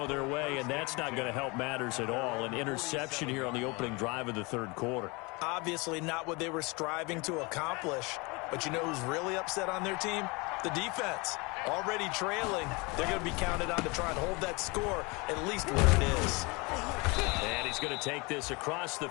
their way, and that's not going to help matters at all. An interception here on the opening drive of the 3rd quarter. Obviously not what they were striving to accomplish. But you know who's really upset on their team? The defense. Already trailing. They're going to be counted on to try and hold that score at least where it is. And he's going to take this across the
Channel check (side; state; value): right; quieter; 27.1 dB